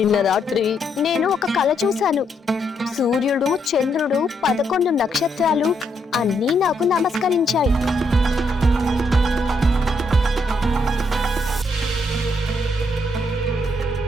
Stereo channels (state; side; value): normal; both; correlation 0.76